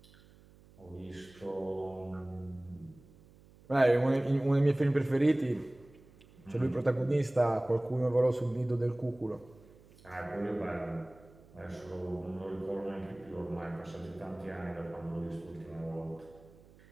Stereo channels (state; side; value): noise; right; hum, 25 dB below the sound